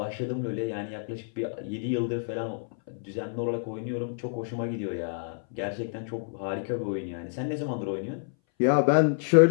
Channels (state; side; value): silent; right; 58 dB below the other